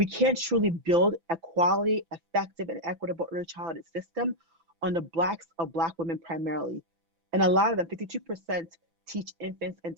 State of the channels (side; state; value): left; late; 6.0 ms